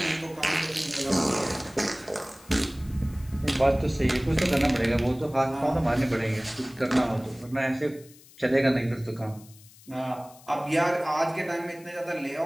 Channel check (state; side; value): noise; left; hiss, 23 dB below the sound